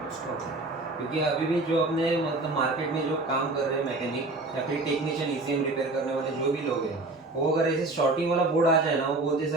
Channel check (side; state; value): left; quieter; 3.0 dB